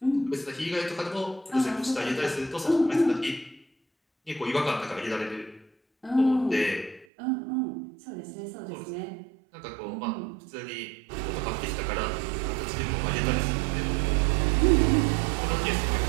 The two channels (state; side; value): drops out; left; at 7.1 s